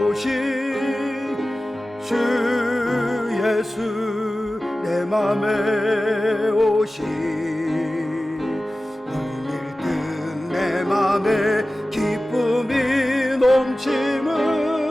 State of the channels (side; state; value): both; normal; correlation 0.96